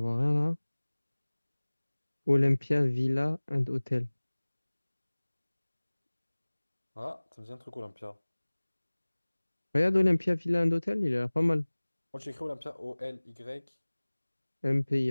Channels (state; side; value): inverted; both; correlation -1.00